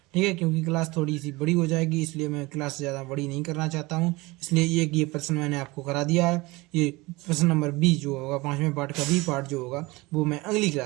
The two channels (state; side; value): quieter; left; 22.6 dB